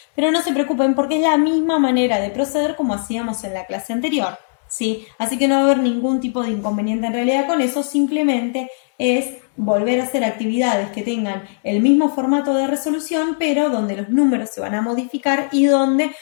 Pero no se preocupen porque es la misma manera de proceder como hacíamos en la clase anterior, ¿sí? Así que no va a haber ningún tipo de inconveniente en realidad con eso, simplemente es volver a hacer actividades que tengan el mismo formato de resolución, pero donde los números se van a modificar y donde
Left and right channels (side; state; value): right; silent; digital silence